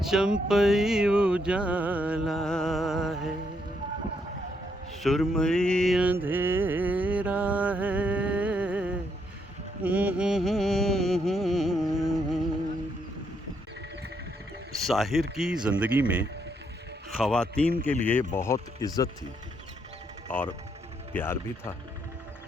चंपई उजाला है, सुरमई अंधेरा है। साहिर की ज़िंदगी में ख़वातीन के लिए बहुत इज़्ज़त थी और प्यार भी था।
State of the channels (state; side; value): normal; both; correlation 0.75